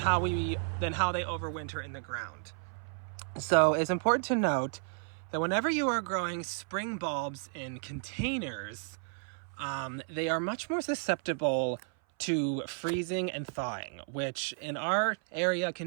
they overwinter in the ground. So it's important to note that whenever you are growing spring bulbs in containers, they are much more susceptible to freezing and thawing, which in our area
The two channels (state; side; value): silent; left; 56 dB below the other